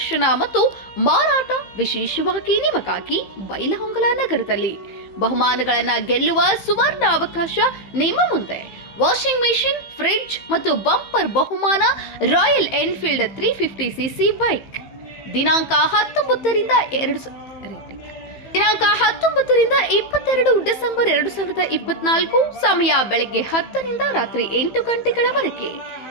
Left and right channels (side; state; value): right; late; 15 ms